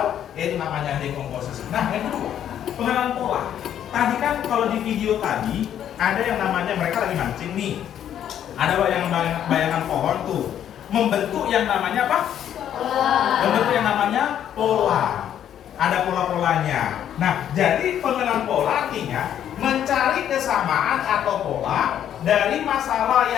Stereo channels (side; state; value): right; quieter; 10.1 dB